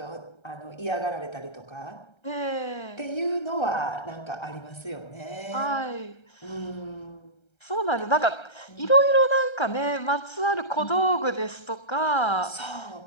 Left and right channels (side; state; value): right; late; 1.3 ms